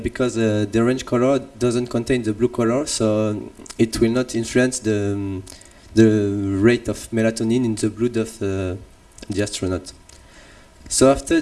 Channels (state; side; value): identical; both; correlation 1.00